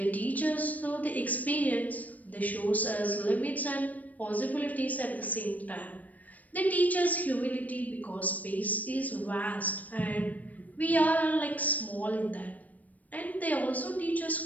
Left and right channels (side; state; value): right; late; 0.074 ms